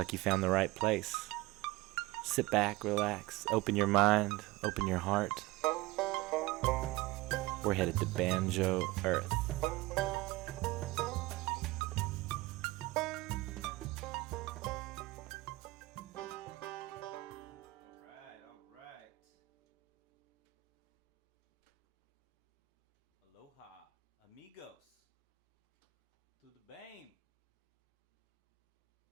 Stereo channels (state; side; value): quieter; left; 20.2 dB